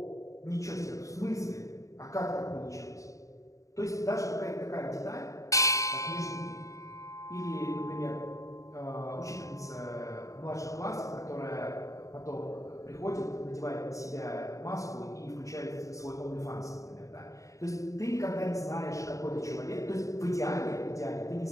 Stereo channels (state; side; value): late; right; 0.16 ms